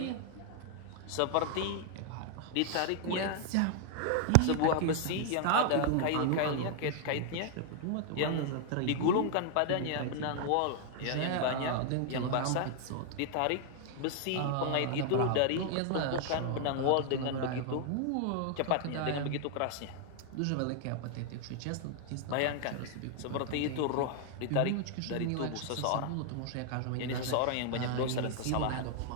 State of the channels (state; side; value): different; both; correlation 0.00